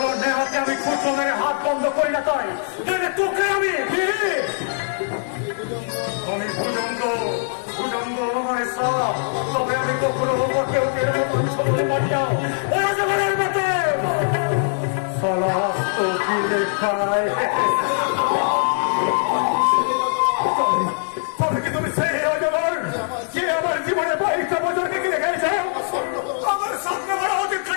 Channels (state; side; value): silent; right; digital silence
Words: নেহাতে আমি খুচরো মেরে হাত বন্ধ করি না, তাই তোকে আমি কখনো কেউ মঞ্চ বলে মারিয়া ওরা জগনের মতো সমস্ত গিলে খায়। তবে কি তুমি সেই অজগর যে আমার জীবনে 22টা বছরকে কিনে খেয়েছ, আমার স্বপ্ন বড়